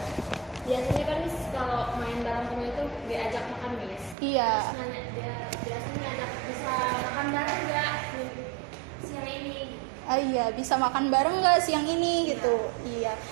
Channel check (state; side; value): drops out; left; at 4.2 s